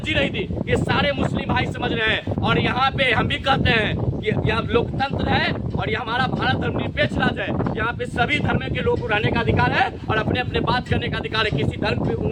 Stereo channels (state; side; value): identical; both; correlation 1.00